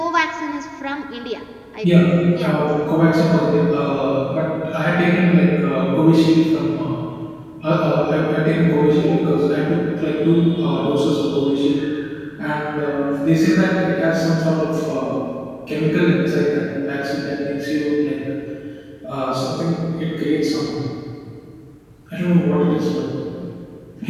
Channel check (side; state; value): both; identical; correlation 1.00